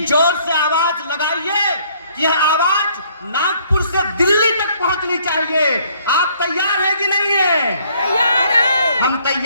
जोर से आवाज लगाइए कि यह आवाज नागपुर से दिल्ली तक पहुंचनी चाहिए। आप तैयार हैं कि नहीं है? तैयार है। हम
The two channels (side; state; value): both; inverted; correlation -0.63